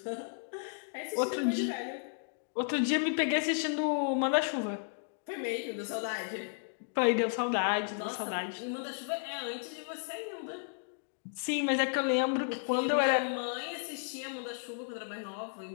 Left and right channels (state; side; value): silent; right; digital silence